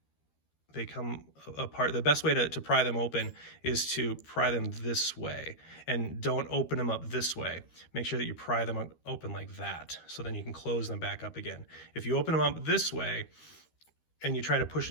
come apart. The best way to pry them open is to pry them this way, and don't open them up this way. Make sure that you pry them open like that, so then you can close them back up again. If you open them up this way and you try to push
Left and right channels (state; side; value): late; right; 13 ms